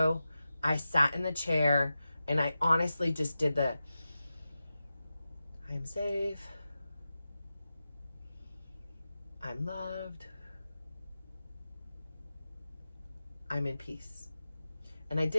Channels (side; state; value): both; inverted; correlation -0.92